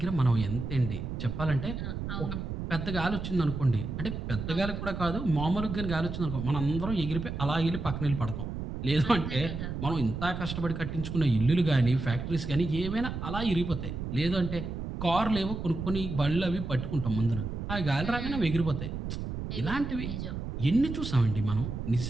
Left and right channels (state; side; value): noise; right; rumble, 5 dB below the sound